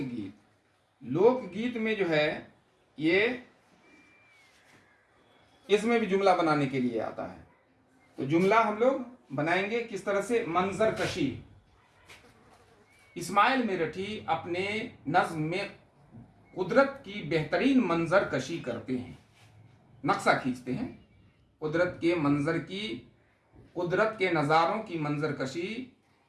लोकगीत में जो है ये, इसमें भी जुमला बनाने के लिए आता है। तो जुमला हम लोग बनाएंगे किस तरह से? मंजर कशी। इस्माइल मेरठी अपने नज्म में कुदरत की बेहतरीन मंजर कशी करते हैं, नक्शा खींचते हैं। कुदरत के मंजर की, कुदरत के नज़ारों की मंजर कशी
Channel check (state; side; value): identical; both; correlation 1.00